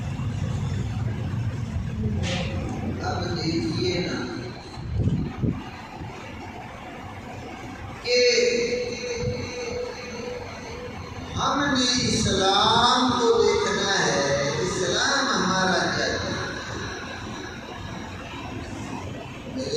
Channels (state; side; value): identical; both; correlation 1.00